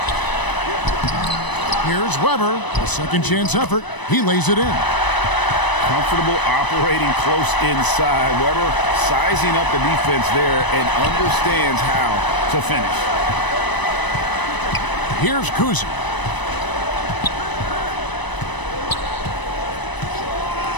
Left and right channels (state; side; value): late; right; 1.0 ms